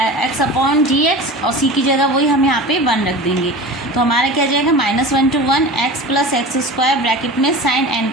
upon dx, और c की जगह वही हम यहाँ पे 1 रख देंगे, तो हमारा क्या जाएगा -1 to 1 x plus x square bracket में sine N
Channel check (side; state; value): both; normal; correlation 0.34